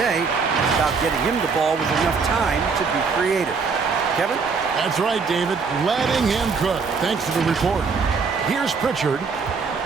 it's about getting him the ball with enough time to be creative. Kevin? That's right, David. Letting him cook. Thanks for the report. Here's Pritchard.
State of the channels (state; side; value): quieter; left; 5.1 dB